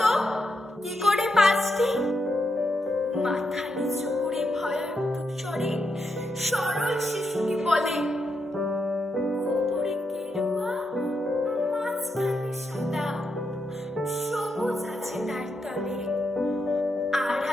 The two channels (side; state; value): both; normal; correlation 0.83